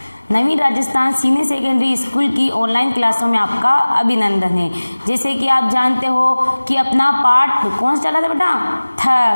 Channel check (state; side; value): inverted; both; correlation -1.00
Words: नवीं राजस्थान सीनियर सेकेंडरी स्कूल की ऑनलाइन क्लासों में आपका अभिनंदन है। जैसे कि आप जानते हो कि अपना पाठ कौन सा चल रहा था